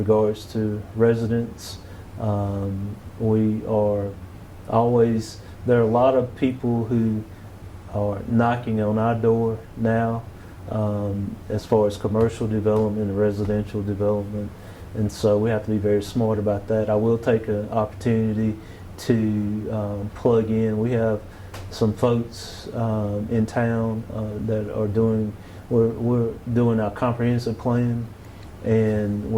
to residents. We are always, there are a lot of people who are knocking on our door now as far as commercial development and residential development. And so we have to be very smart about that. I will take an opportunity to plug in. We have some folks in town that are we're doing our comprehensive plan, and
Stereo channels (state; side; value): identical; both; correlation 1.00